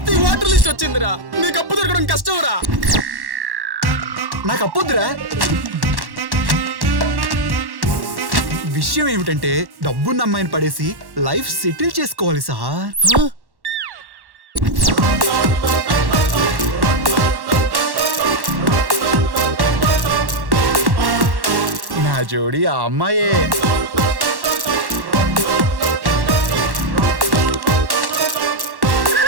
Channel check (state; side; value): late; left; 1.1 ms